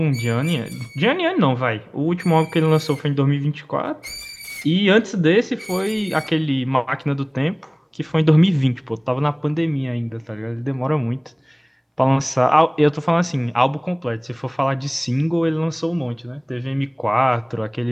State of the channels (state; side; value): identical; both; correlation 1.00